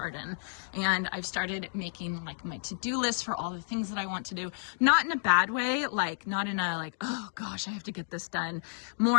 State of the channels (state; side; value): silent; right; digital silence